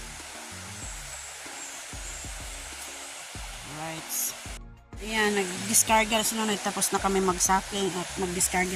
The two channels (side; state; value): both; identical; correlation 1.00